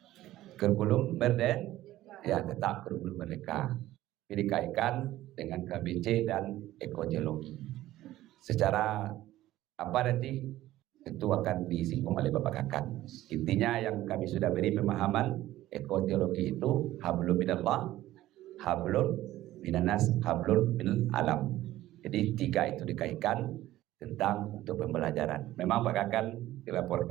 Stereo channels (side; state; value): left; quieter; 15.1 dB